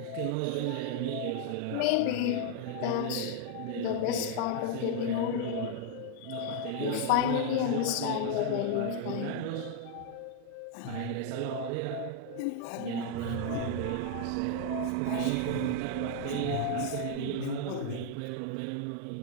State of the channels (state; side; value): different; both; correlation 0.00